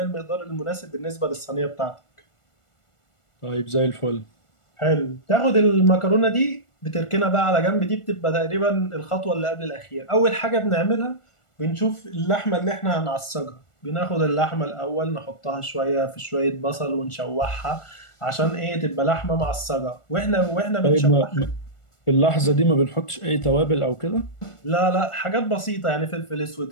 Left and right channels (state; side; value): late; right; 1.4 ms